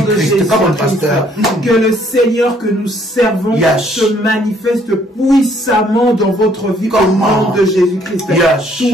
Comme pasteur, que le Seigneur que nous servons se manifeste puissamment dans votre vie au nom de Jésus-Christ.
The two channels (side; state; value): both; normal; correlation 0.64